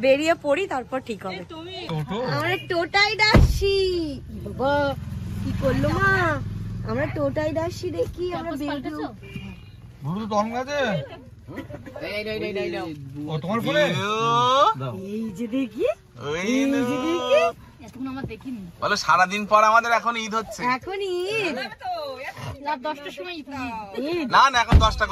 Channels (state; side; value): identical; both; correlation 1.00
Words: বেরিয়ে পড়ি তারপর ঠিক হবে। আমরা টোটাই ডাকছি, বাবা কি করলো মা, আমরা টোটাই ডাকছি, দেখি আমরা বেরোবো। ব্লুটুথ অন আছে? ও তোমার ফোনে? এই যে দেখি, ওই এই যে দেখি, এতক্ষণ আমার দেখিনি। বলো সারাদিন পর আমাদের এখন ঈদ হচ্ছে। এখন ঈদ, রাত 10টার সময় ঈদ। না না এখন 10টা